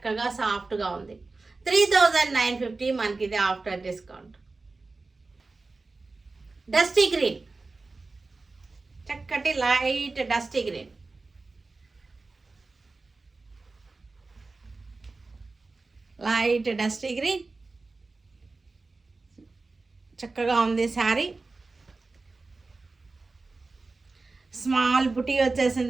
సాఫ్ట్గా ఉంది. 3950 మనకి ఇది ఆఫ్టర్ డిస్కౌంట్. డస్టీ గ్రీన్, చక్కటి light dusty green. Light dusty green చక్కగా ఉంది శారీ. స్మాల్ బుటీ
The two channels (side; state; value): left; quieter; 3.7 dB